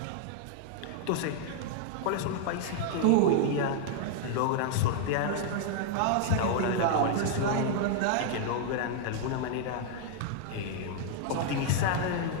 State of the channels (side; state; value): both; different; correlation 0.00